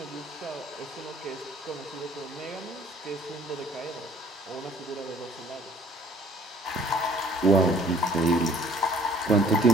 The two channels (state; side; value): normal; both; correlation 0.56